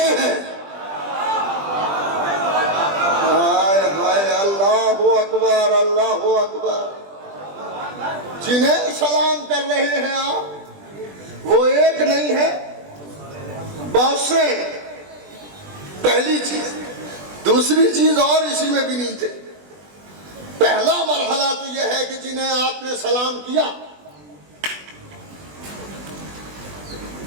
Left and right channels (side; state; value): left; late; 20 ms